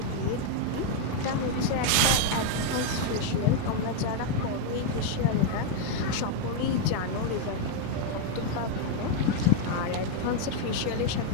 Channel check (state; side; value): different; both; correlation 0.01